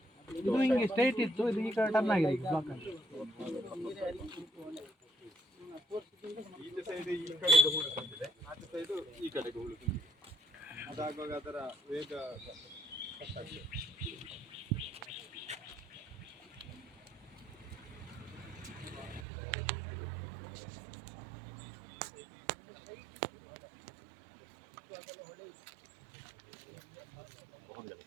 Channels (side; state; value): left; drops out; at 19.2 s